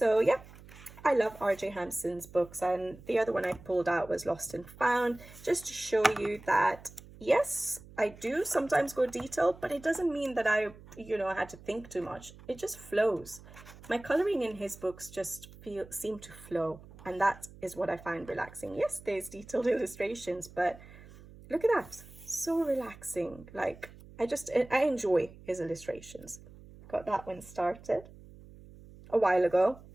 yeah, I love R.J. Hampson's books, and the other one I pulled out was Lost and Found, just to show you that, yes, I do sometimes go detailed, but it doesn't mean that I, had to think too much. It just flows. My coloring in his books just seem to flow, and that is what I find relaxing. Yes, there's detailed illustrations, but look at that. So relaxing. Like, I enjoy his illustrations. Got that one started a while ago,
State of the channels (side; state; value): right; noise; hum, 19 dB below the sound